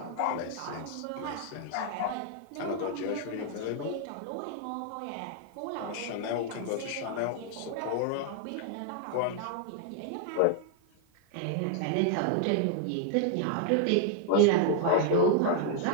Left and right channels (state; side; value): different; both; correlation -0.01